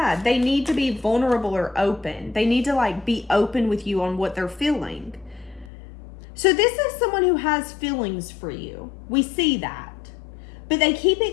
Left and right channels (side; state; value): right; drops out; at 5.7 s